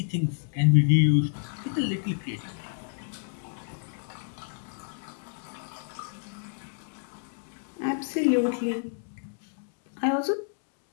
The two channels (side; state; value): right; silent; digital silence